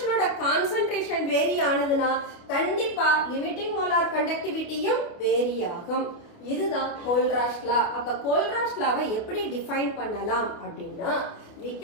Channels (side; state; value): right; late; 29 ms